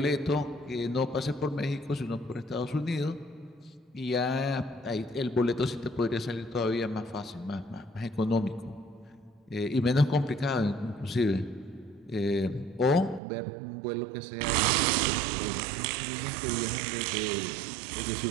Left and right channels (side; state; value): left; drops out; at 13.2 s